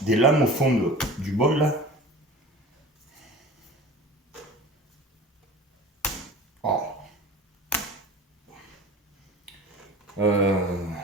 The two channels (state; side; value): normal; both; correlation 0.39